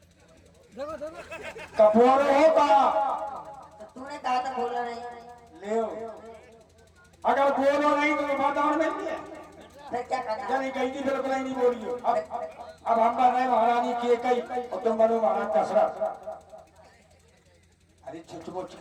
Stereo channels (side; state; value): both; identical; correlation 1.00